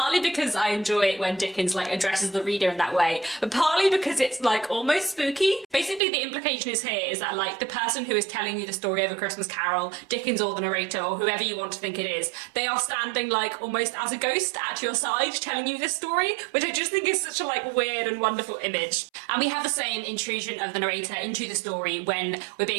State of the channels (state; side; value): drops out; left; at 6.0 s